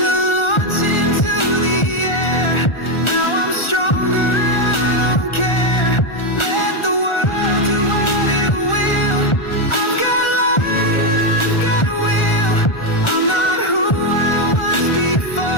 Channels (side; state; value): right; late; 1.4 ms